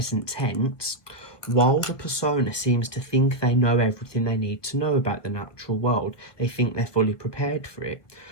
tense, while the persona seems to think they know everything they need to know about the natural world, they think they're fully prepared for it,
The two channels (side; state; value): right; late; 1.6 ms